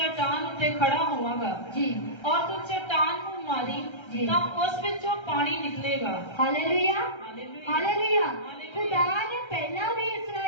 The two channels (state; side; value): late; right; 1.3 ms